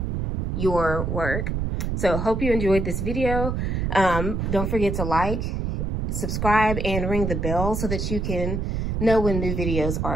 your work. So hope you enjoyed this video. Don't forget to like, subscribe, and ring the bell so that you can know when new videos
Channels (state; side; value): noise; right; rumble, 1 dB below the sound